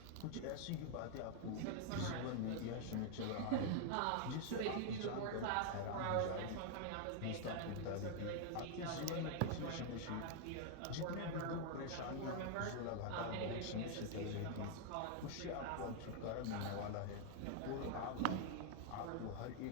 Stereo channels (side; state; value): both; different; correlation 0.00